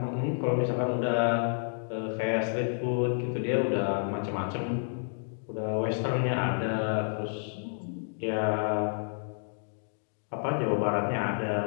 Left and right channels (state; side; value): silent; right; digital silence